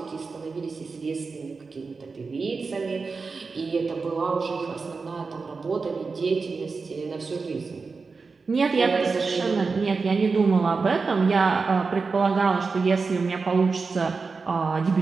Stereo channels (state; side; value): quieter; left; 4.5 dB